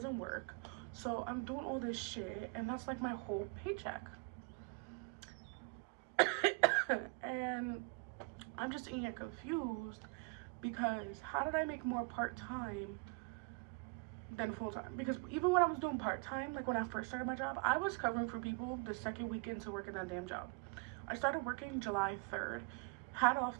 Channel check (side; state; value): left; quieter; 32.7 dB